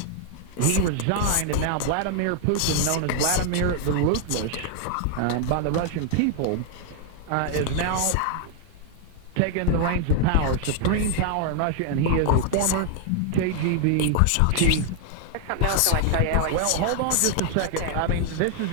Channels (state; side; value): different; both; correlation 0.00